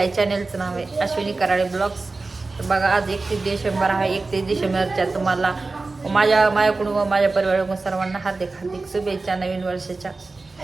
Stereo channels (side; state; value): left; quieter; 3.6 dB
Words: चॅनेलचं नाव आहे अश्विनी कराळे ब्लॉग्स. तर बघा, आज 31 डिसेंबर आहे. 31 डिसेंबरच्या तुम्हाला माझ्याकडून व माझ्या परिवाराकडून सर्वांना हार्दिक हार्दिक शुभेच्छा नवीन वर्षाच्या.